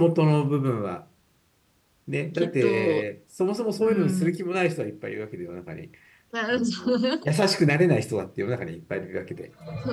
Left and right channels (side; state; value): both; identical; correlation 1.00